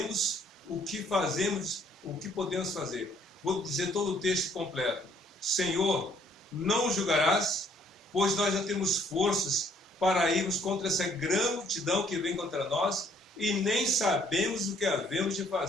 o que fazemos, o que podemos fazer. Vou dizer todo o texto completo. Senhor, não julgarás, pois nós já temos forças para irmos contra essa grande multidão que vem contra nós e nem sabemos o que havemos de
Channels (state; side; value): normal; both; correlation 0.63